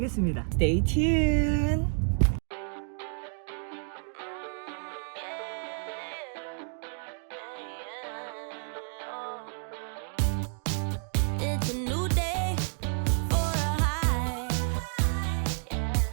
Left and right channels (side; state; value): left; silent; 58 dB below the other